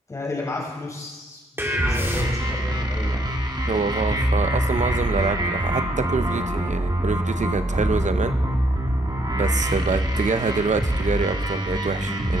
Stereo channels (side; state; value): both; normal; correlation 0.69